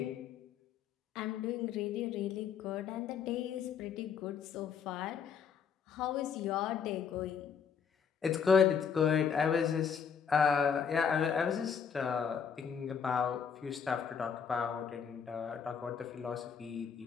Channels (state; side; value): quieter; right; 6.9 dB